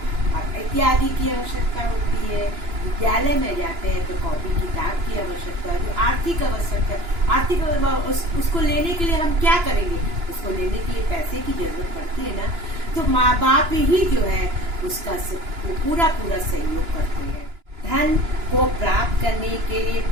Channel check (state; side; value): late; left; 2.9 ms